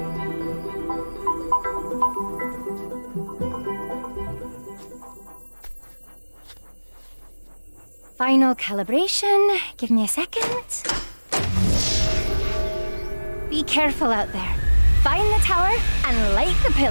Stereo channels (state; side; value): inverted; both; correlation -1.00